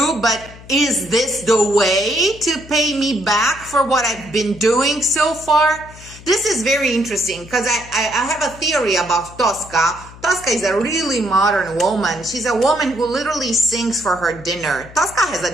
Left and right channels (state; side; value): noise; left; hum, 19 dB below the sound